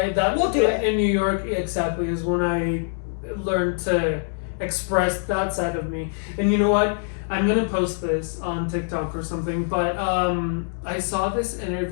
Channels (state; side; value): silent; right; digital silence